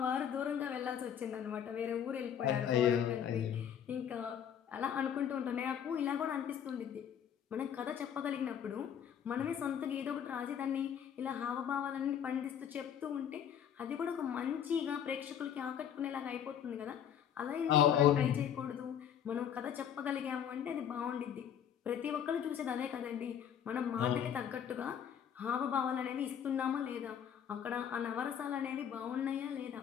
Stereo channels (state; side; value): quieter; right; 8.8 dB